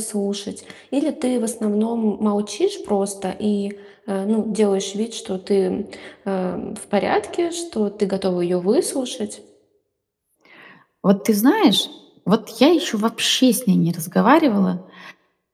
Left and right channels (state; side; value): identical; both; correlation 1.00